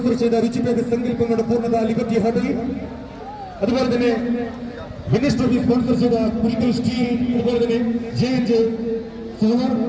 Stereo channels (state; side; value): identical; both; correlation 1.00